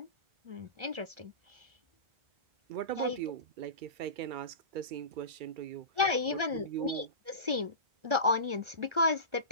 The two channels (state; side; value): late; left; 1.4 ms